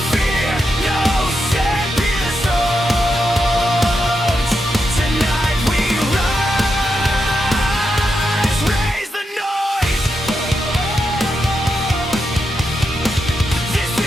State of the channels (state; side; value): normal; both; correlation 0.85